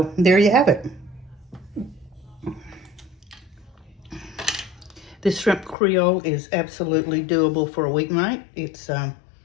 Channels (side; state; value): right; drops out; at 5.8 s